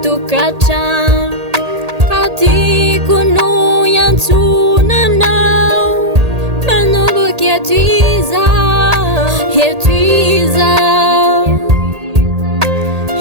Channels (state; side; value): late; left; 1.8 ms